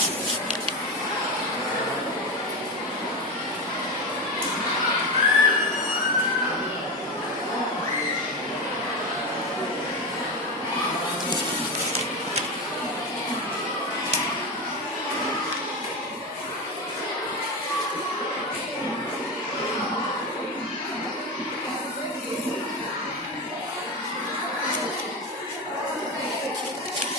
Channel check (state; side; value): normal; both; correlation 0.18